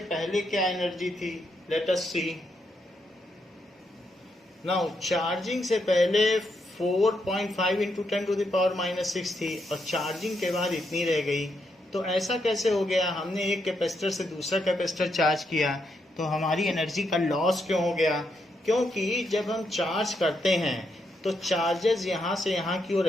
पहले क्या एनर्जी थी। लेट अस सी नाउ, चार्जिंग से पहले 4.5 इंटू 10⁻⁻6 थी और चार्जिंग के बाद इतनी रह गई। तो ऐसा कैसे हो गया, हमने एक कैपेसिटर से दूसरा कैपेसिटर चार्ज किया तो हमारी एनर्जी का लॉस क्यों हो गया, क्योंकि जब हम चार्ज करते हैं तो चार्जेस यहाँ से यहाँ की ओर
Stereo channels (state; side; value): normal; both; correlation 0.80